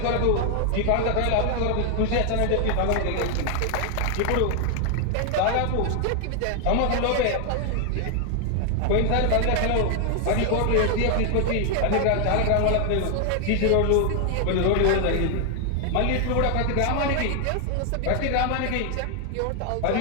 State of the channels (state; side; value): different; both; correlation 0.00